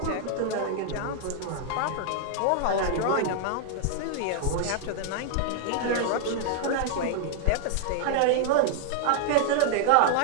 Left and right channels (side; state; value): both; different; correlation 0.00